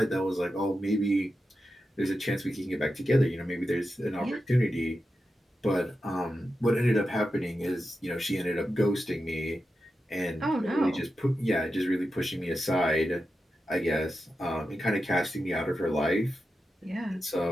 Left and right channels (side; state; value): both; normal; correlation 0.90